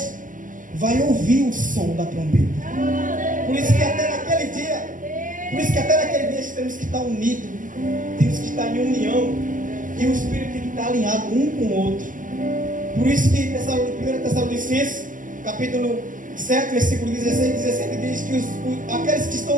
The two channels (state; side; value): late; left; 0.38 ms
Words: vai ouvir o som da trombeta. Por isso que até naquele dia temos que estar unidos, temos que estar em união, e o Espírito tem que estar alinhado um com o outro. Por isso que 1 Tessalonicenses, capítulo 7, versículo 16 e 17 diz que aqueles que